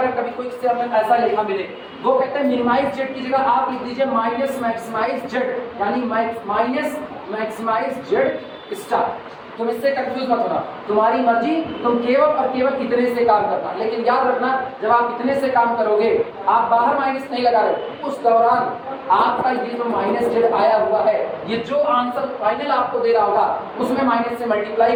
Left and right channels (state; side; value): identical; both; correlation 1.00